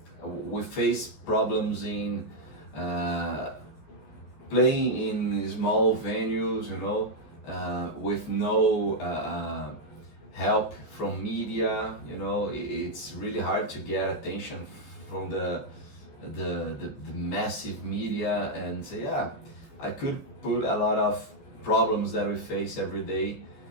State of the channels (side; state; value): right; late; 14 ms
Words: we face problems in playing in small venues, you know, with no help from media, you know. It's really hard to get attention from the massive media. And yeah, I could put a lot of problems that we face every day